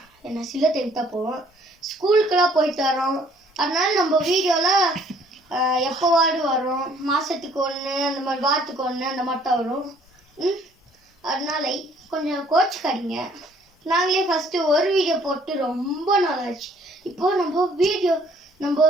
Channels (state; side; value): normal; both; correlation 0.60